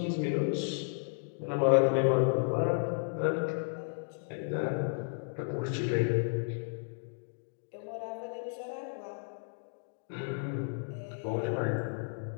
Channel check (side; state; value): right; silent; digital silence